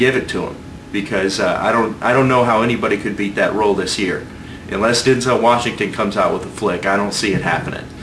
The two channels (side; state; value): both; identical; correlation 1.00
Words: it to him. Because I don't know how anybody could beat that role this year. Unless Denzel Washington comes out with a flick, I don't see it happening.